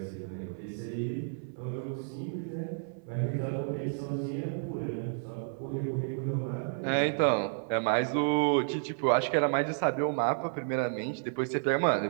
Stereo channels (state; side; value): silent; left; 57 dB below the other